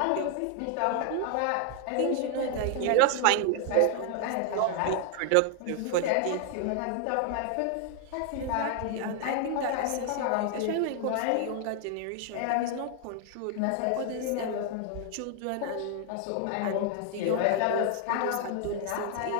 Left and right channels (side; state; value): both; different; correlation 0.00